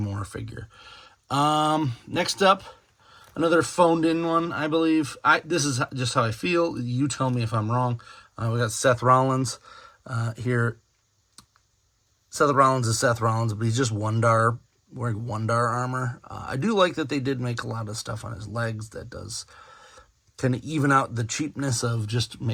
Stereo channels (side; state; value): both; identical; correlation 1.00